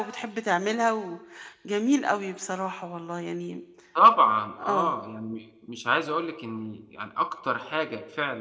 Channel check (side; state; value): both; identical; correlation 1.00